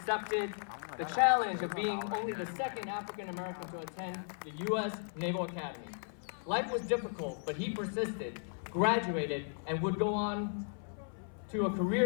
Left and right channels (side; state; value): right; silent; 54 dB below the other